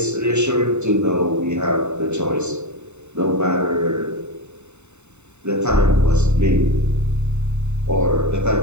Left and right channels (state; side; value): late; left; 0.82 ms